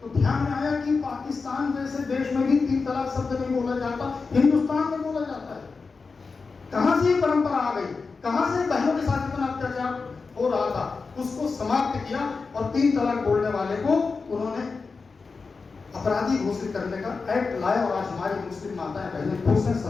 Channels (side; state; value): right; quieter; 4.5 dB